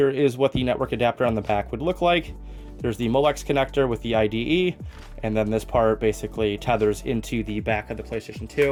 is what the network adapter on the back would look like. There's the Molex connector with the IDE, and then this part basically tethers into the back of the PlayStation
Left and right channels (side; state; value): both; identical; correlation 1.00